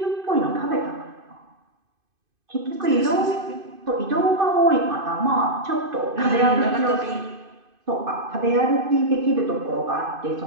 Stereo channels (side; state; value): left; late; 2.5 ms